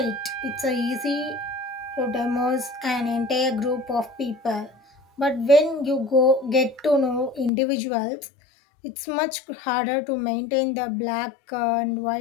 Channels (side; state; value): right; drops out; at 7.5 s